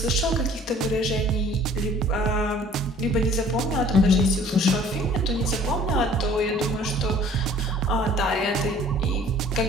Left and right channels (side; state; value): both; normal; correlation 0.53